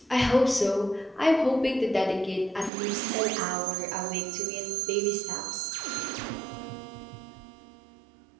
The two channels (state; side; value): drops out; left; at 2.7 s